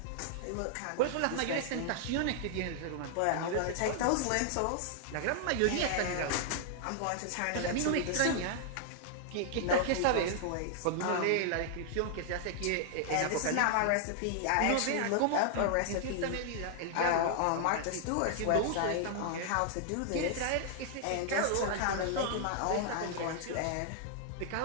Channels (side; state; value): both; different; correlation -0.01